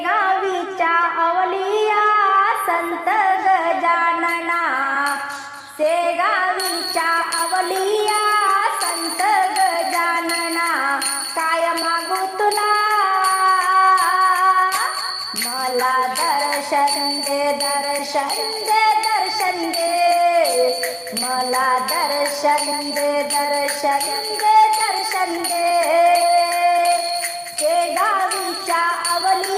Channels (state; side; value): identical; both; correlation 1.00